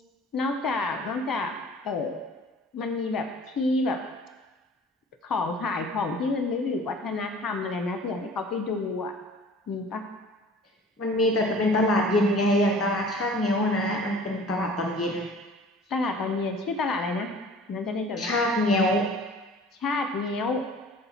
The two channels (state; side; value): normal; both; correlation 0.47